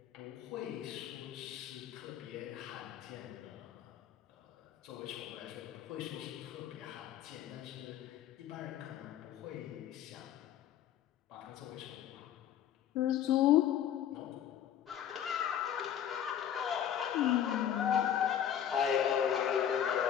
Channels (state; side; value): quieter; right; 10.0 dB